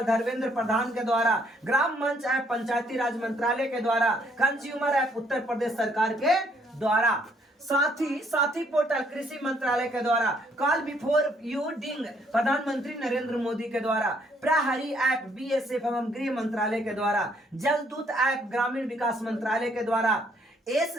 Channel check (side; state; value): both; normal; correlation 0.67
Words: धर्मेंद्र प्रधान के द्वारा, ग्राम मंच ऐप पंचायती राज मंत्रालय के द्वारा, कंज्यूमर ऐप उत्तर प्रदेश सरकार के द्वारा, साथी पोर्टल कृषि मंत्रालय के द्वारा, कॉल बिफोर यू डिंग प्रधानमंत्री नरेंद्र मोदी के द्वारा, प्रहरी ऐप बीएसएफ एवं गृह मंत्रालय के द्वारा, जलदूत ऐप ग्रामीण विकास मंत्रालय के द्वारा,